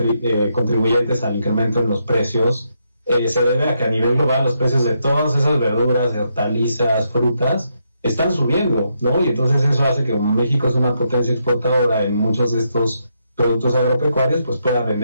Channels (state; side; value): inverted; both; correlation -0.79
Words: al incremento en los precios, se debe a que a nivel global los precios de todas esas verduras, hortalizas, frutas, están subiendo, ¿no? Y entonces eso hace que como México es una potencia exportadora en muchos de estos productos agropecuarios, pues pueda